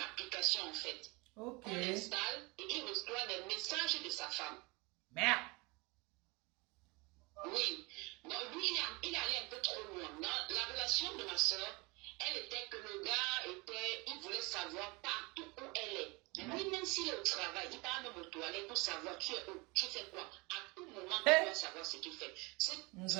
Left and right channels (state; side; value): quieter; left; 26.4 dB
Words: application en fait. Ok. On l'installe et il reçoit les messages de sa femme. Merde. s'il est au travail, il va même aux toilettes pour savoir tu es où, tu fais quoi. À tout moment, il doit savoir ce qu'il fait. Ce